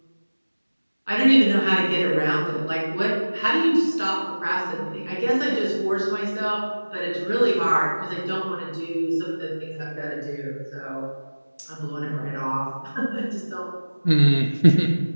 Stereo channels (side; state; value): both; inverted; correlation -1.00